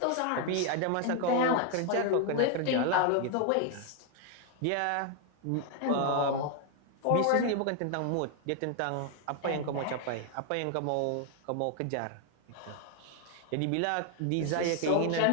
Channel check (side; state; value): both; different; correlation 0.01